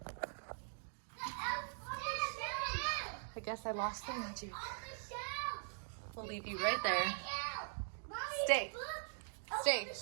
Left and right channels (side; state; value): left; silent; digital silence